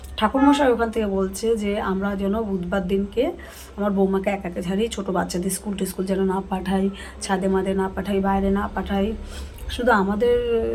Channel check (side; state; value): both; identical; correlation 1.00